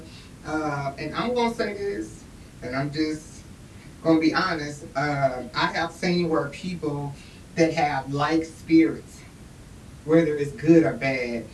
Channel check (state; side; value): identical; both; correlation 1.00